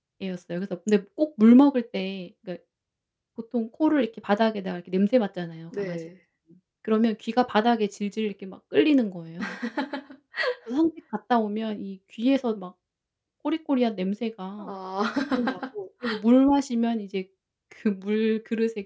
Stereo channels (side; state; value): both; identical; correlation 1.00